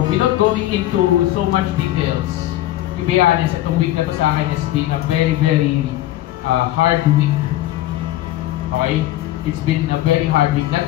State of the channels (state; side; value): quieter; right; 14.8 dB